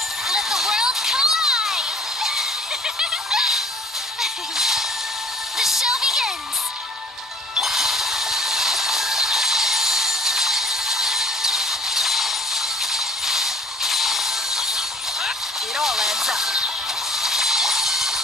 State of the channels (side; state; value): both; normal; correlation 0.50